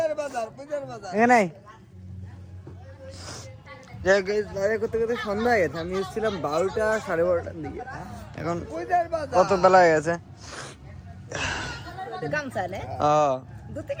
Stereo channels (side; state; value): both; identical; correlation 1.00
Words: পূজার বাজার এখানে বাইরে করতে করতে সন্ধ্যা হয়ে গেছে আমি এসেছিলাম 12টা 12:30টার দিকে এখন পূজার বাজার কত বেলা হয়ে গেছে গামছা নে দুতে